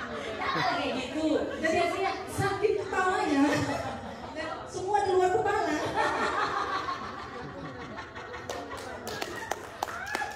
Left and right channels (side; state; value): both; identical; correlation 1.00